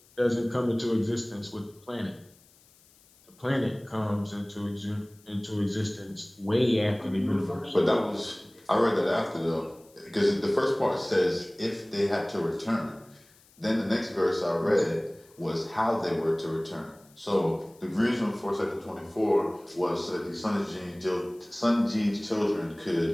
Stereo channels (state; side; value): noise; left; hiss, 29 dB below the sound